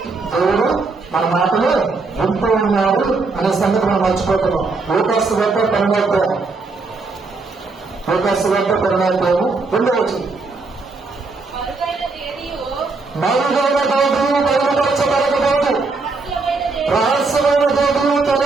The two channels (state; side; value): quieter; left; 3.9 dB